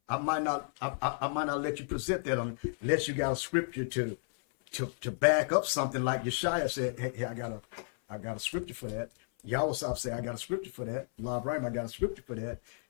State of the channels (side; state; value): right; silent; 56 dB below the other